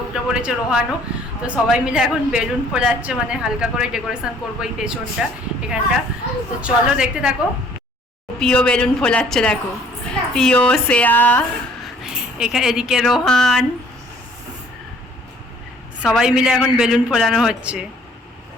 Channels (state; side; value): normal; both; correlation 0.57